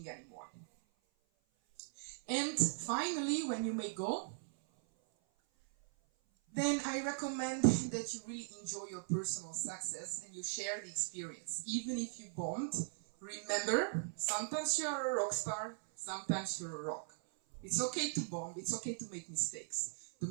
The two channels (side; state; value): left; silent; 51 dB below the other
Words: anymore. And finally, when you may go, then I recommend that you really enjoy your personal success and you share the experience. Even if you bombed, remember, sometimes you're a rock star, sometimes you're a rock. It's okay to bomb, it's okay to make mistakes. The